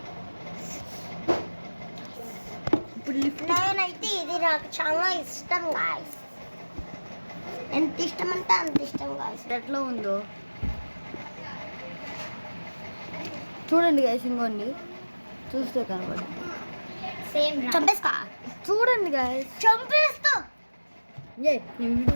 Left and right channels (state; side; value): inverted; both; correlation -1.00